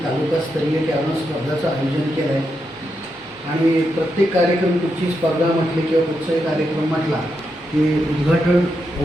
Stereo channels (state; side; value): normal; both; correlation 0.84